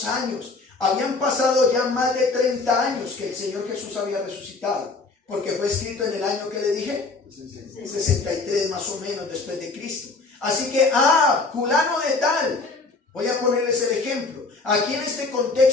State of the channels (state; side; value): quieter; right; 3.8 dB